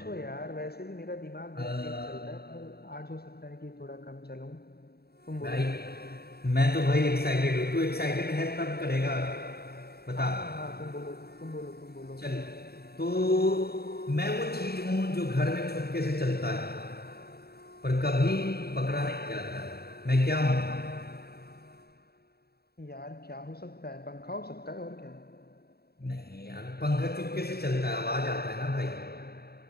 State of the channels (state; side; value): late; right; 0.46 ms